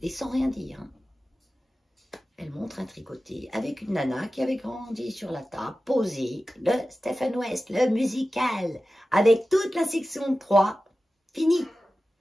et sans rien dire. Hein. Elle montre un tricoté avec une nana qui avait grandi sur la table, posée, le Stephen West, le musical, avec toute la section 3, fini.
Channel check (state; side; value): normal; both; correlation 0.95